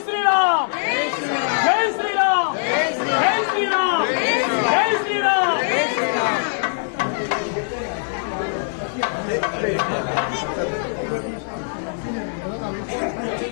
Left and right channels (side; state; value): right; silent; 64 dB below the other